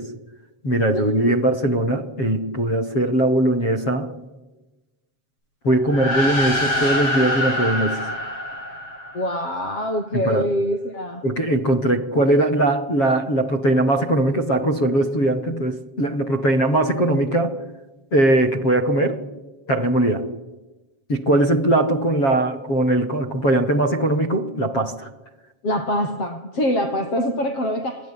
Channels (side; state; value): right; late; 7.4 ms